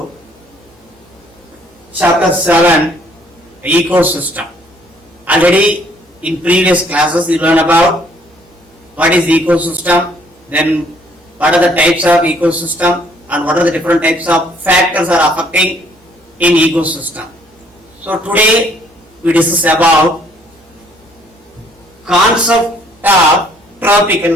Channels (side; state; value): both; normal; correlation 0.63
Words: chapter 7 ecosystem. Already in previous classes you learned about what is ecosystem, then what are the types of ecosystem and what are the different types of factors are affecting in ecosystem. So today we discuss about concept of tropical